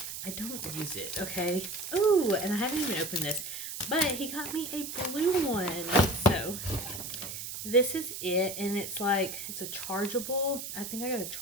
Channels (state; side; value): noise; right; hiss, 7 dB below the sound